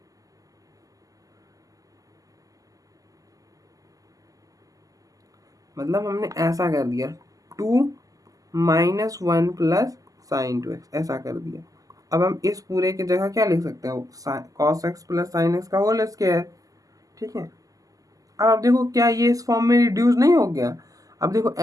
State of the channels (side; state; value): left; late; 0.17 ms